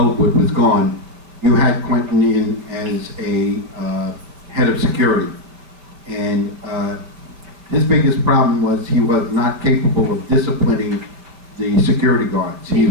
was gone, you had Quentin in as a head of security. And his biggest problem was he was not capable of disciplining the security guards. He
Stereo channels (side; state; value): left; late; 5.3 ms